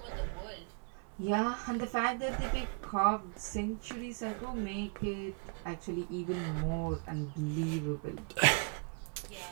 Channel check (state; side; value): quieter; left; 38.7 dB